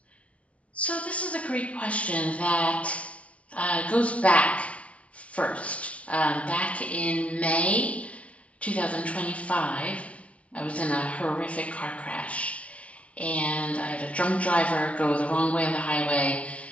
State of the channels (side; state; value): right; late; 0.064 ms